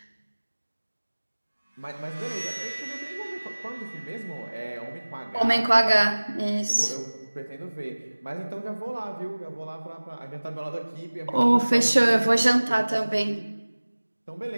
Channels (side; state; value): both; inverted; correlation -1.00